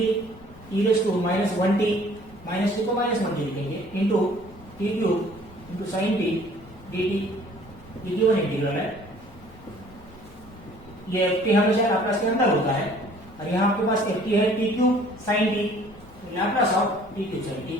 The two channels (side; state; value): both; normal; correlation 0.55